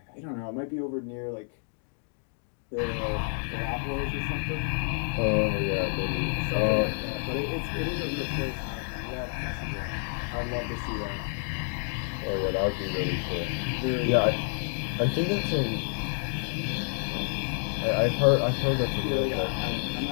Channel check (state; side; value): silent; right; 59 dB below the other